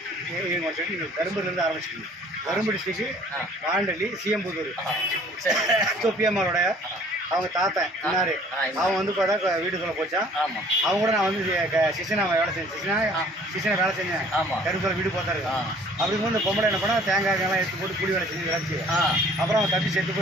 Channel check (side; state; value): both; normal; correlation 0.54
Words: நீங்கள் வந்துட்டு நீங்கள் கரும்புலேருந்து ஆரம்பிச்சிக்கிங்க. கரும்பு டிஸ்ட்ரிக்ட்டு வாண்டலி சிஎம்புதூர் தொப்பியம்மாவோட அவங்க தாத்தன் இன்னாரு. அவன் வந்து பார்த்தா வீட்டுக்குள்ளே போச்சான். அவங்க கூட நான் வந்து சிசனா வேலை செஞ்சேன். சிசனை வேலை செஞ்சேன். கரும்புல வீடு பார்த்தாரு. அப்படிங்கும்போது இந்த பொம்பளை என்ன பண்ணா தேங்காய்லாம் எடுத்து போட்டு கூலி வேலை செஞ்சு விளைச்சி அப்புறம் அவன் தப்பி செத்து